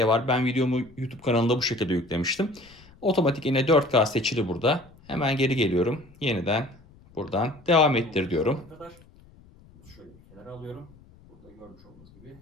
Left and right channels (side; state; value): left; noise; rumble, 25 dB below the sound